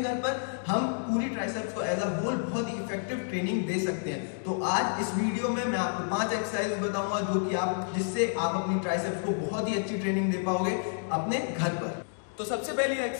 घर पर, हम पूरी ट्राइसेप्स को एज अ होल बहुत ही इफेक्टिव ट्रेनिंग दे सकते हैं। तो आज इस वीडियो में मैं आपको 5 एक्सरसाइज बताऊंगा जो कि जिससे आप अपनी ट्राइसेप्स को बहुत ही अच्छी ट्रेनिंग दे पाओगे अपने घर पर। तो सबसे पहली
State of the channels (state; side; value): silent; right; digital silence